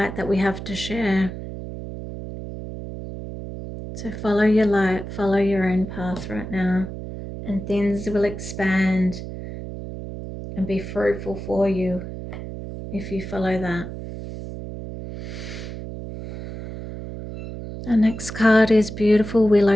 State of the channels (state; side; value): noise; right; hum, 9 dB below the sound